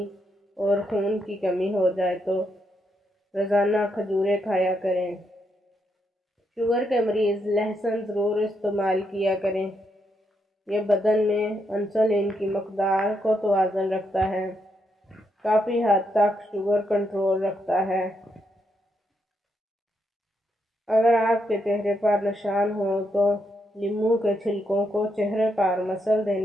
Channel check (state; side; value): normal; both; correlation 0.79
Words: اور خون کی کمی ہو جائے تو روزانہ کھجوریں کھایا کریں۔ شوگر کے مریض لہسن ضرور استعمال کیا کریں۔ یہ بدن میں انسولین کی مقدار کو توازن رکھتا ہے، کافی حد تک شوگر کنٹرول رکھتا ہے۔ اگر آپ کے چہرے پر نشان ہوں تو لیموں کے چھلکوں کو چہرے پر مسل